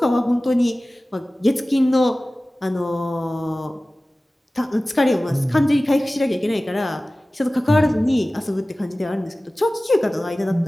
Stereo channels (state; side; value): normal; both; correlation 0.97